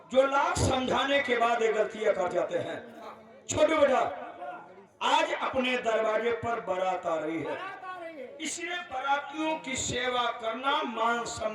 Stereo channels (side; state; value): both; identical; correlation 1.00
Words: जो लाख समझाने के बाद ये गलतियां कर जाते हैं। छोटे बेटा आज अपने दरवाजे पर बारात आ रही है, इसलिए बारातियों की सेवा करना, मान